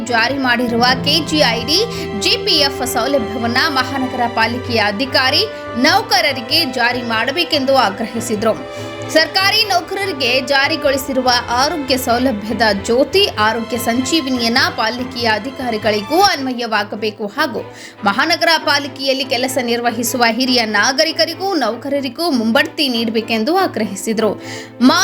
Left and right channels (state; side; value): identical; both; correlation 1.00